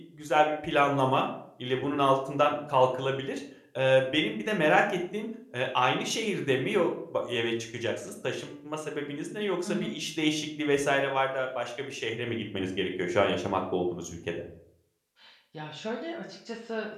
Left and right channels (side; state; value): both; identical; correlation 1.00